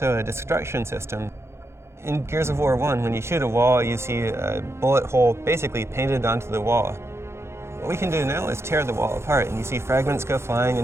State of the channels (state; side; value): late; left; 0.13 ms